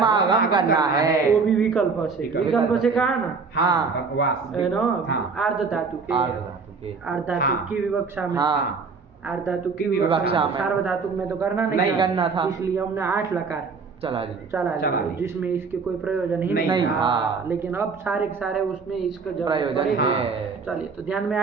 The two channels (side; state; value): left; quieter; 4.9 dB